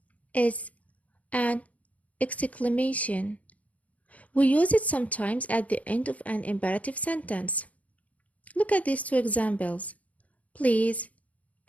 is an exclamation. We use it sometimes at the end of an imperative sentence. Look at these 2 examples. Please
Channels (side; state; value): right; late; 0.070 ms